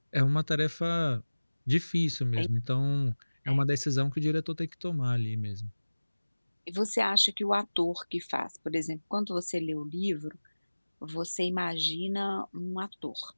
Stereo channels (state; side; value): inverted; both; correlation -1.00